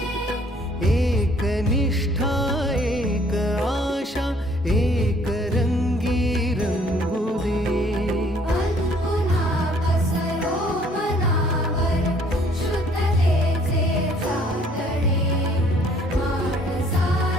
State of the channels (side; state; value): both; normal; correlation 0.60